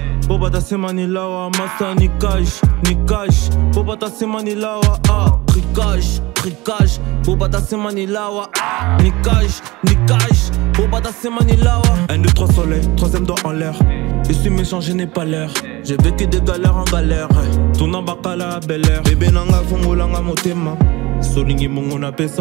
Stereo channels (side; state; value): left; quieter; 21.6 dB